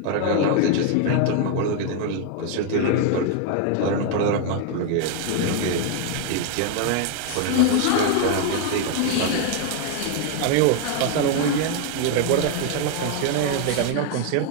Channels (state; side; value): different; both; correlation 0.01